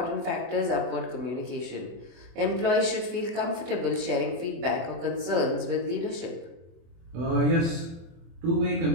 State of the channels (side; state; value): left; late; 24 ms